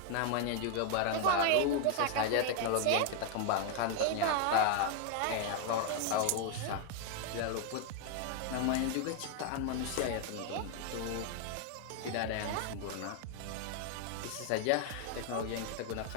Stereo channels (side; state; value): both; different; correlation 0.00